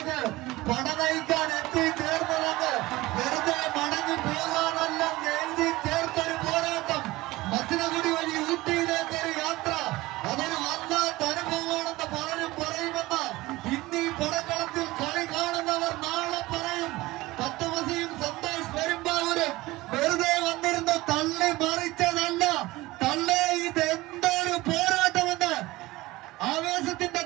പടനയിക്കാൻ എത്തിച്ചേർന്നതെന്ന് വെറുതെ മടങ്ങി പോകാനല്ല എഴുതി ചേർത്തൊരു പോരാട്ടം. മച്ചിനഗുഡി വഴി ഊട്ടിയിലേക്ക് ഒരു യാത്ര, അതൊരു വല്ലാത്ത അനുഭവമാണെന്ന് പലരും പറയുമെന്ന് ഇന്നീ പടക്കളത്തിൽ കളി കാണുന്നവർ നാളെ പറയും. തത്വമസിയും സന്തോഷ് പെരുമ്പാവൂര്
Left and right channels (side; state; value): left; quieter; 19.3 dB